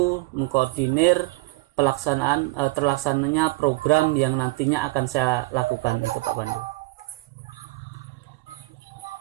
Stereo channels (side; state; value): left; quieter; 22.3 dB